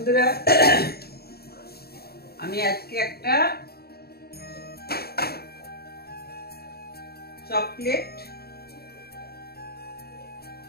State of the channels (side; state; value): right; late; 0.46 ms